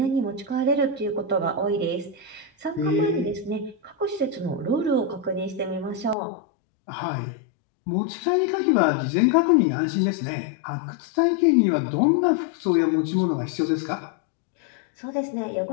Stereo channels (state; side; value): drops out; right; at 6.2 s